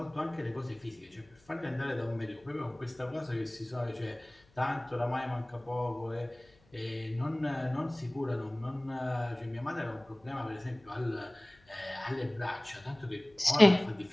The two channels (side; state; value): left; noise; hum, 30 dB below the sound